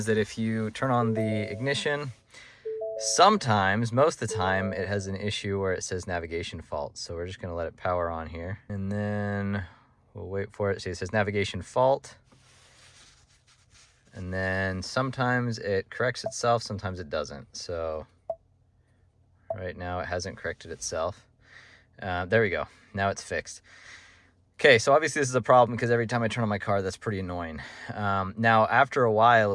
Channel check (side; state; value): both; identical; correlation 1.00